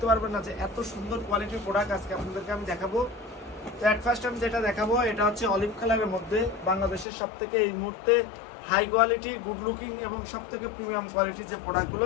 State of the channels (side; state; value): right; drops out; at 7.1 s